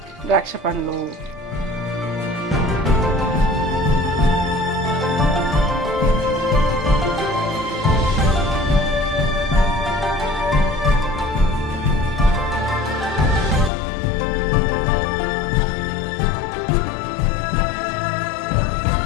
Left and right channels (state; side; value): drops out; right; at 13.7 s